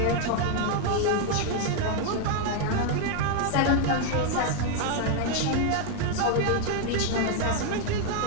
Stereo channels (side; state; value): both; different; correlation 0.01